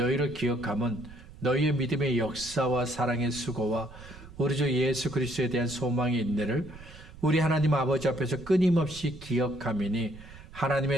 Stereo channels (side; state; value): right; noise; rumble, 18 dB below the sound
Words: 기억함은 너희의 믿음의 역사와 사랑의 수고와 우리 주 예수 그리스도에 대한 소망의 인내를 우리 하나님 아버지 앞에서 끊임없이 기억함이니